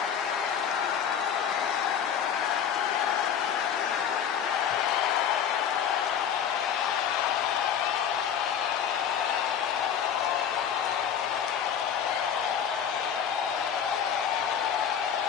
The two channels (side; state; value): right; quieter; 8.3 dB